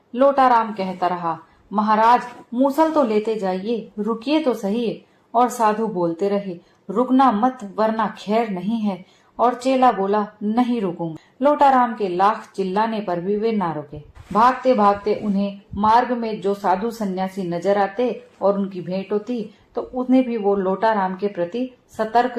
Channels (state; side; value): identical; both; correlation 1.00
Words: लोटाराम कहता रहा, महाराज मूसल तो लेते जाइए, रुकिए तो सही। और साधु बोलते रहे, रुकना मत वरना खैर नहीं है। और चेला बोला, नहीं रुकूंगा। लोटाराम के लाख चिल्लाने पर भी वे ना रुके। भागते भागते उन्हें मार्ग में जो साधु सन्यासी नजर आते और उनकी भेंट होती तो उन्हें भी वो लोटाराम के प्रति सतर्क